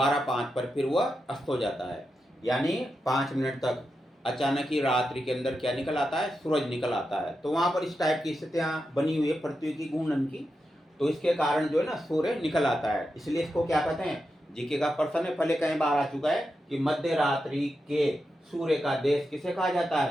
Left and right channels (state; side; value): normal; both; correlation 0.88